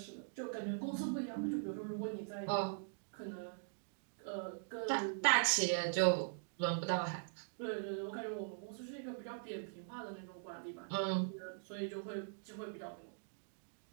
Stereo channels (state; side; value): silent; left; digital silence